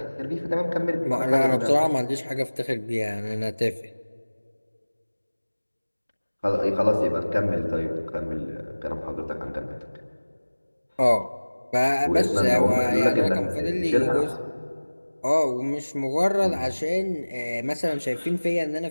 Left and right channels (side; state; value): both; inverted; correlation -1.00